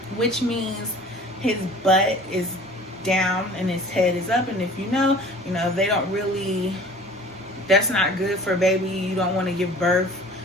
which means his butt is down and his head is up. And if they don't really, that's not good for a baby. You don't want to give birth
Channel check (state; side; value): normal; both; correlation 0.45